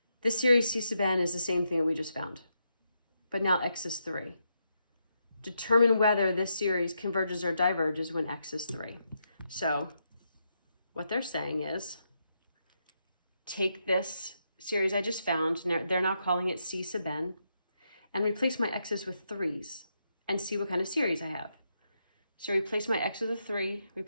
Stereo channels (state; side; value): inverted; both; correlation -0.82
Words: this series c sub n is the same thing that we just found, but now x is 3. Determine whether this series converges or diverges when x is 3. So what they're saying is take this series I just found, they're now calling it c sub n, and replace my x's with 3's and see what kind of series I have. So replace my x with a 3,